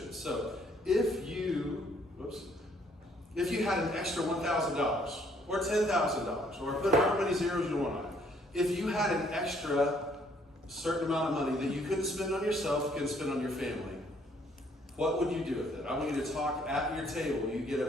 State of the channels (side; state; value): both; normal; correlation 0.65